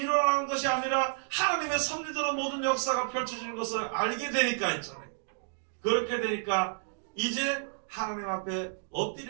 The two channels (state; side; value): silent; left; digital silence